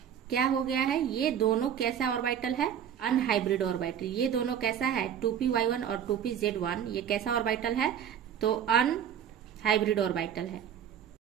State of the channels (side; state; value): left; quieter; 9.0 dB